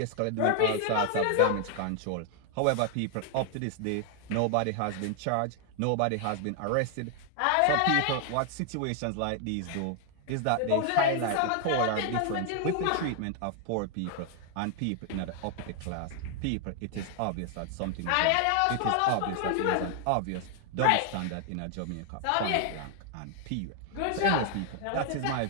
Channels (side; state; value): both; different; correlation 0.00